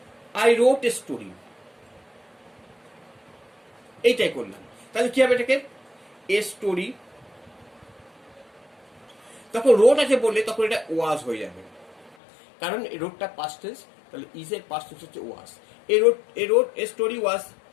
আই রোট এ স্টোরি, এইটাই করলাম, তাহলে কি হবে, এটাকে এ স্টোরি, তখন রোট আছে বললে তখন এটা ওয়াজ হয়ে যাবে, কারণ এই রোডটা পাস্ট টেন্স, তাহলে ইজ এর পাস্ট টেন্স হচ্ছে was. A road a story was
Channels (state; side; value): drops out; right; at 12.2 s